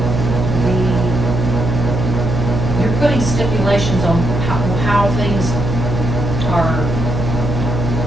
You're putting stipulations on how things are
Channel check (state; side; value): noise; right; hum, 3 dB below the sound